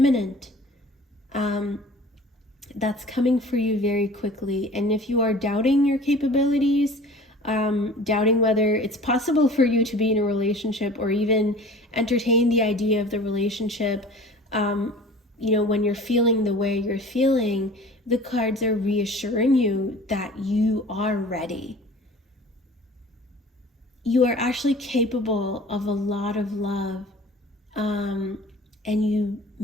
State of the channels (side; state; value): both; normal; correlation 0.44